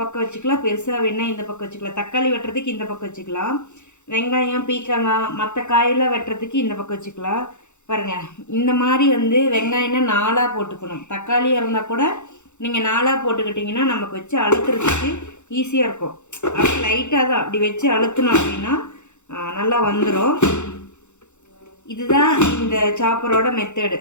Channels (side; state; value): right; late; 0.83 ms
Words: பக்கம் வச்சுக்கலாம், பெருசாக வேணும்னா இந்த பக்கம் வச்சுக்கலாம். தக்காளி வெட்டுறதுக்கு இந்த பக்கம் வச்சுக்கலாம், வெங்காயம் பீக்கங்காய் மற்ற காயெல்லாம் வெட்டுறதுக்கு இந்த பக்கம் வச்சுக்கலாம். பாருங்கள், இந்த மாதிரி வந்து வெங்காயம்னா 4ஆக போட்டுக்கணும். தக்காளியாக இருந்தால் கூட நீங்கள் 4ஆக போட்டுக்கிட்டிங்கன்னா நமக்கு வச்சு அழுத்துறதுக்கு ஈஸியாக இருக்கும். அப்படி லைட்டாக தான் அப்படி வச்சு அழுத்தணும் அப்படின்னா நல்லா வந்துடும். இதுதான் இந்த சாப்பரோட மெத்தடு.